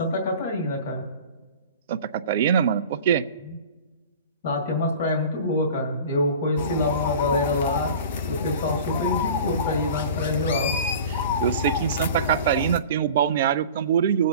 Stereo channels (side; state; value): both; inverted; correlation -0.39